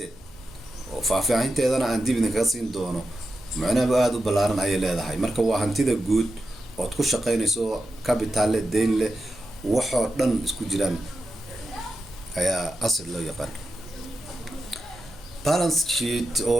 oo faahfaahinteedana aan dib idinkaga siin doono macnaheedu aad u ballaaran ay leedahay marka waa hantida guud oo ku shaqeynayso capital leh deyn leh waxoo dhan isku jiraan ayaa asset loo yaqaan balance sheet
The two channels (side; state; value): left; noise; hum, 24 dB below the sound